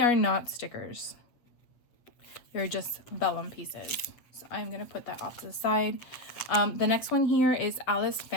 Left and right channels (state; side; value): late; right; 8.0 ms